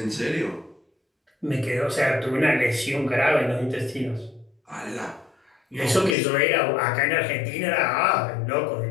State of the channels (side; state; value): right; drops out; at 6.2 s